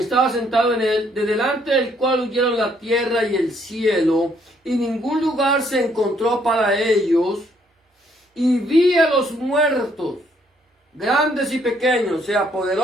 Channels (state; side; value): normal; both; correlation 0.68